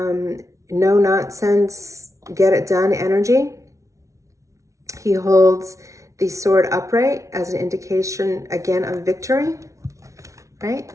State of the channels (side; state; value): left; late; 0.15 ms